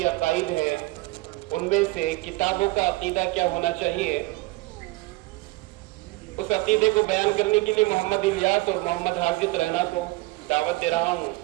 عقائد ہیں ان میں سے کتابوں کا عقیدہ کیا ہونا چاہیے اس عقیدے کو بیان کرنے کے لیے محمد الیاس اور محمد حافظ رہنا کو دعوت دے رہا ہوں.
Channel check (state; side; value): quieter; left; 21.8 dB